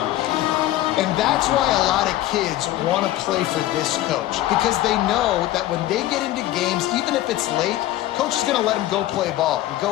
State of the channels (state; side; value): quieter; right; 14.7 dB